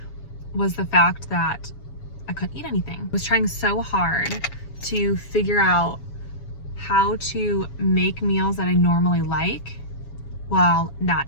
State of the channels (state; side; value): late; right; 7.2 ms